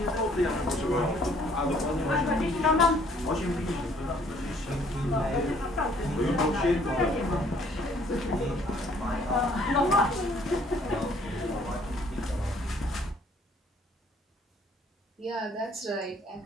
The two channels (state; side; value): normal; both; correlation 0.61